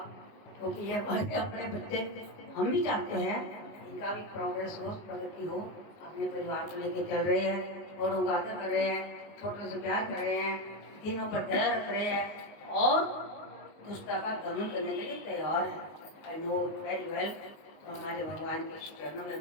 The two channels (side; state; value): right; late; 19 ms